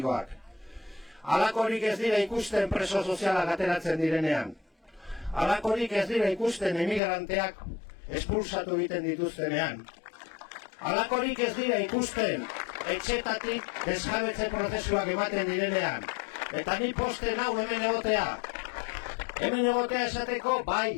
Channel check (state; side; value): drops out; right; at 7.0 s